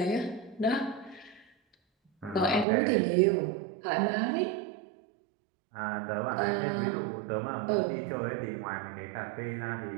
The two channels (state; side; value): drops out; left; at 2.7 s